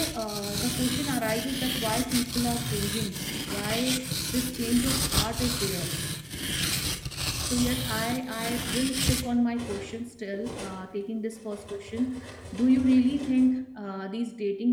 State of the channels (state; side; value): identical; both; correlation 1.00